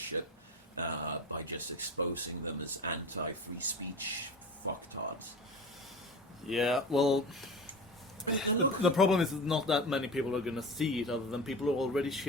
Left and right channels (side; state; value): both; normal; correlation 0.32